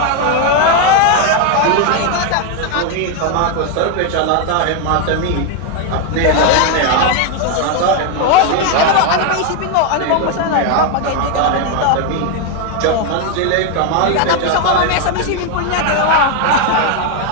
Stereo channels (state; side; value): different; both; correlation 0.01